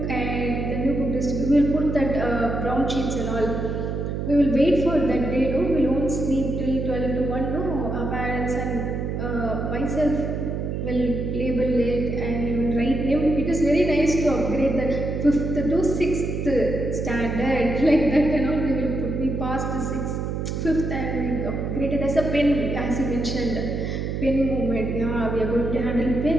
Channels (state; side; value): noise; right; hum, 3 dB below the sound